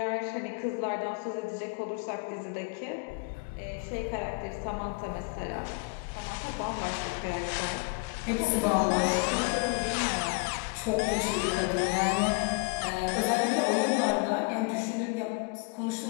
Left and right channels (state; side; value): quieter; right; 30.9 dB